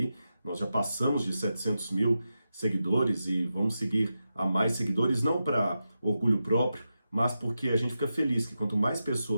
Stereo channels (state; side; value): inverted; both; correlation -0.89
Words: Nós já passamos de 700 mil seguidores e vamos seguir a mais seguidores, não para orgulho próprio, mas porque a gente fica feliz que quanto mais